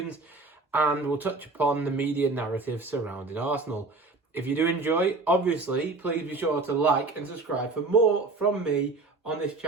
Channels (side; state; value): left; quieter; 3.6 dB